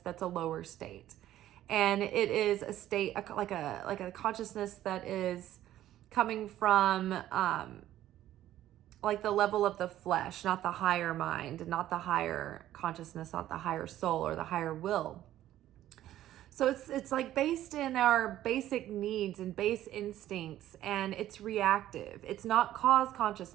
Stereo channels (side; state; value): left; quieter; 13.1 dB